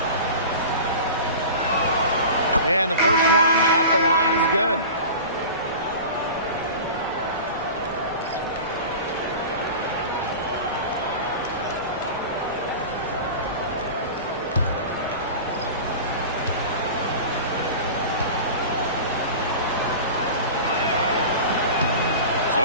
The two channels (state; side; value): inverted; both; correlation -0.34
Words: And the first one at the line is good.